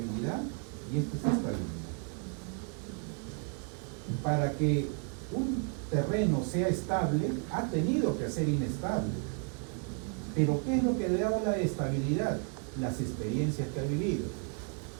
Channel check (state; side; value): quieter; left; 39.7 dB